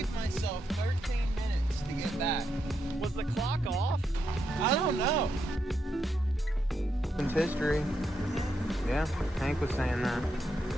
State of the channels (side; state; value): both; normal; correlation 0.82